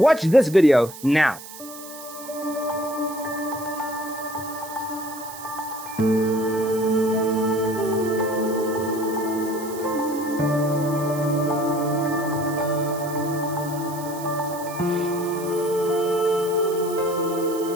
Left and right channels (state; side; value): noise; right; hiss, 15 dB below the sound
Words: this video now.